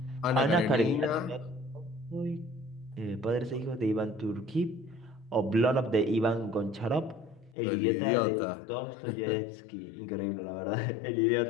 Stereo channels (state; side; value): drops out; right; at 7.6 s